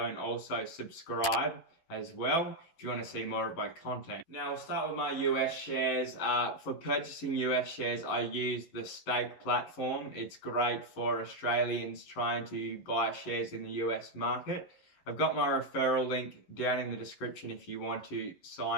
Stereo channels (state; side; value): late; right; 11 ms